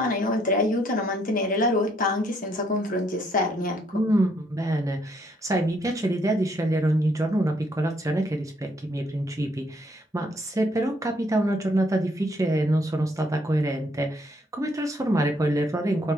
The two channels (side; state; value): both; normal; correlation 0.69